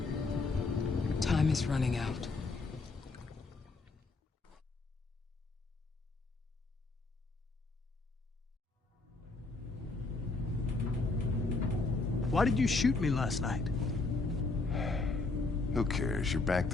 Time is running out. Why did you shoot me last night? Who cares? You're back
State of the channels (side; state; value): right; quieter; 3.6 dB